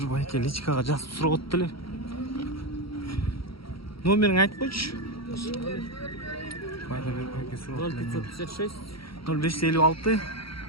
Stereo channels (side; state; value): right; late; 0.75 ms